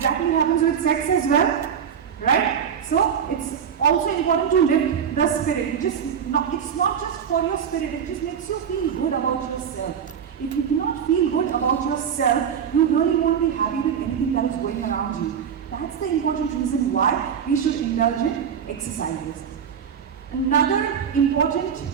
happens with sex as well, right? So, it's also important to lift the spirit. It's not just for your spirit, it just makes you feel good about yourself. If you do not feel good about yourself, you really won't be happy with anything that is going around you. That's the important reason why we should indulge in exercises. Another important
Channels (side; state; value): left; quieter; 7.8 dB